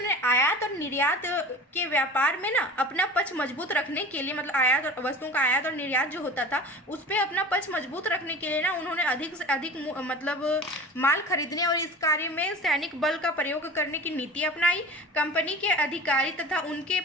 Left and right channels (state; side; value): normal; both; correlation 0.36